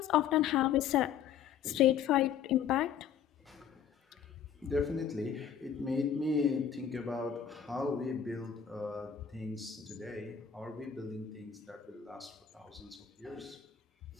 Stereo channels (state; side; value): quieter; right; 8.3 dB